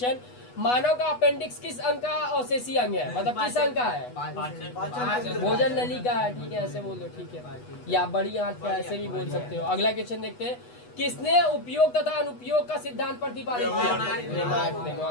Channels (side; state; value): right; late; 8.2 ms